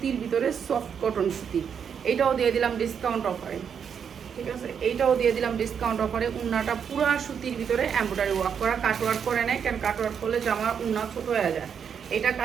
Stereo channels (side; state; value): left; quieter; 7.4 dB